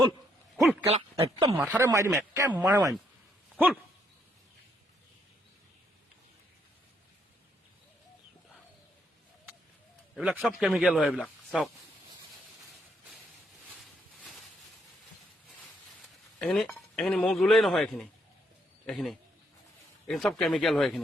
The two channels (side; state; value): both; normal; correlation 0.73